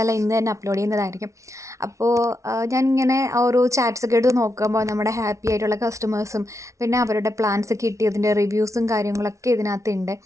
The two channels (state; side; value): late; left; 0.14 ms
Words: ഇന്ന് തന്നെ അപ്ലോഡ് ചെയ്യുന്നതായിരിക്കും. അപ്പോൾ ഞാനിങ്ങനെ ഓരോ ചാറ്റ്സൊക്കെ എടുത്ത് നോക്കുമ്പോൾ നമ്മുടെ ഹാപ്പി ആയിട്ടുള്ള കസ്റ്റമേഴ്സും പിന്നെ അവരുടെ പ്ലാൻസ് കിട്ടിയതിൻ്റെ റിവ്യൂസും കാര്യങ്ങളൊക്കെ ഇതിനകത്തുണ്ട്.